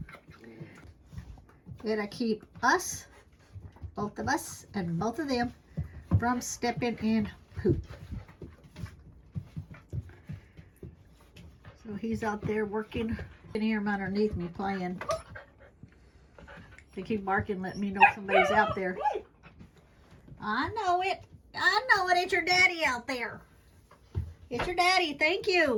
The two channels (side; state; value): both; identical; correlation 1.00